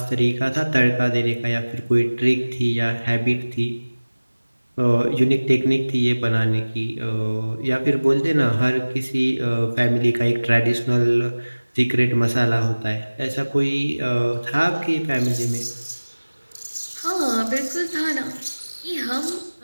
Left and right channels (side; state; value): both; inverted; correlation -1.00